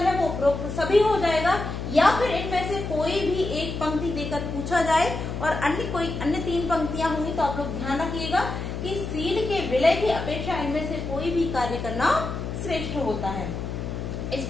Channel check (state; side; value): noise; left; hum, 5 dB below the sound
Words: है वो उपरोक्त सभी हो जाएगा, या फिर इनमें से कोई भी एक पंक्ति देकर पूछा जाए और अन्य 3 पंक्तियां होंगी तो आप लोग ध्यान रखिएगा कि सील के विलय की अपेक्षा इनमें से कोई भी कार्य करना श्रेष्ठ होता है। इस